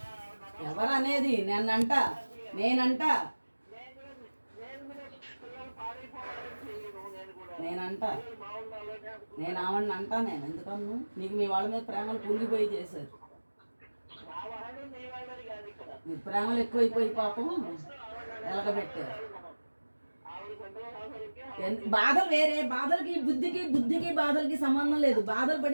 ఎవరనేది నేనంట నేనంట నేనంట నేను ఆవిడని అంటా. నేను ఎందుకన్ను? నీకు మీ వాళ్ళ మీద ప్రేమలు పొంగిపోయి చేశారు. మీ ప్రేమలు ఎక్కువైపోయి పాపం ఎలగబెట్టారు. బాధలు వేరే, బాధలకి బుద్ధికి బాధలకి సంబంధం లేదు. బాధలు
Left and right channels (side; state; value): both; inverted; correlation -1.00